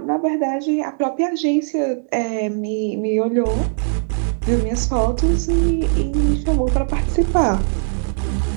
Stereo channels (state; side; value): silent; left; 66 dB below the other